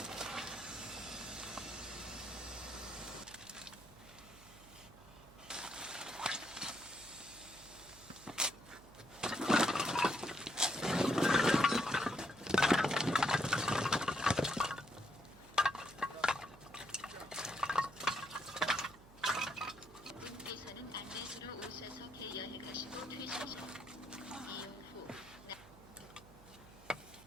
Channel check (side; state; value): right; noise; hum, 22 dB below the sound